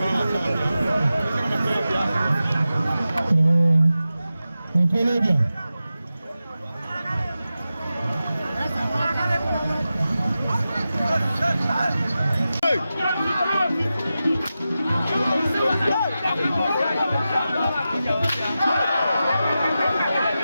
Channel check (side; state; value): both; inverted; correlation -0.92